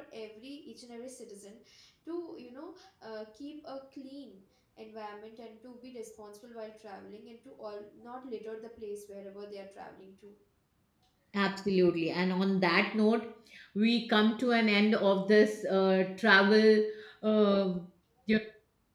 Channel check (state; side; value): identical; both; correlation 1.00